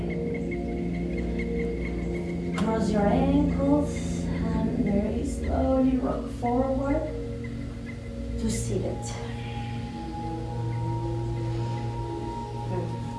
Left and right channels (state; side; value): identical; both; correlation 1.00